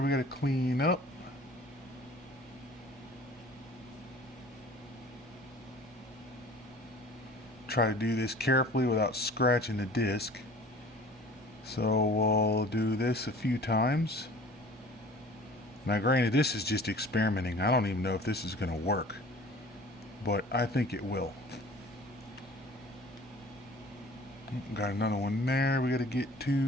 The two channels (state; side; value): normal; both; correlation 0.46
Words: we got to clean up. Try to do this carefully without scratching the disc. So we'll do this a few times. Now granted, this is just experimenting. I don't even know if this is going to work, but I think it will. Got another one there we got to get